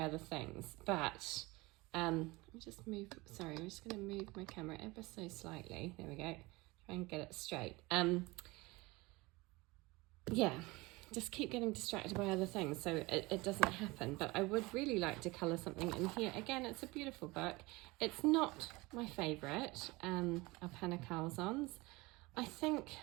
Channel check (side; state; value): left; quieter; 22.8 dB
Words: other things, but let me just move, sorry, I'm just going to move my camera ever so slightly. There we go. Try and get it straight. Yeah. Just keep getting distracted by other things, so it doesn't happen. But I would really like to colour something in here. Again, it's a beautiful book. It's not my favourite of Hanna Karlzon's. I think,